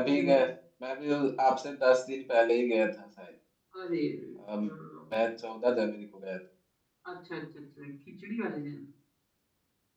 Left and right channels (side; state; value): both; identical; correlation 1.00